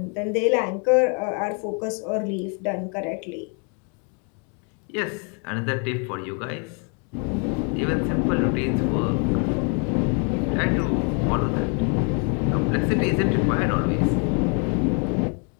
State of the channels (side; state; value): right; quieter; 37.9 dB